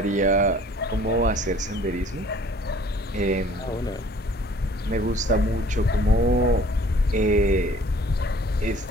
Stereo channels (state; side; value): normal; both; correlation 0.54